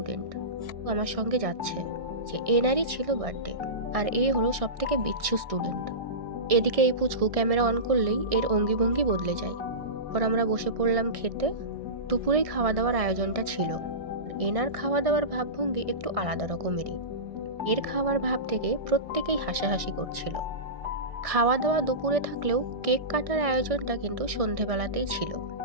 আমার সঙ্গে যাচ্ছে। যে এনারই ছিল বার্থডে, আর এই হলো সব থেকে বিচ্ছু স্টুডেন্ট। এদিকে এই পুচকু ক্যামেরা অন করলেই এর অঙ্গি ভঙ্গি বদলে যায়। পর আমরা বসে পড়লাম খেতে। দুপুরেই খাওয়া দাওয়ার আয়োজনটা ছিল। এনার খাওয়া দাওয়ার ভাবভঙ্গি একটু আলাদা রকমেরই। এর খাওয়ার ভাব থেকে প্রত্যেকেই হাসাহাসি করছিল। খাওয়া দাওয়া দুপুরে থাকলেও কেক কাটার আয়োজনটা কিন্তু সন্ধেবেলাতেই ছিল।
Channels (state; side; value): late; left; 1.6 ms